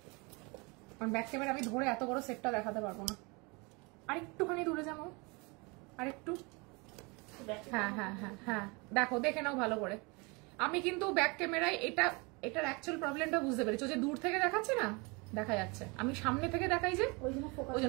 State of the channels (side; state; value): left; quieter; 28.6 dB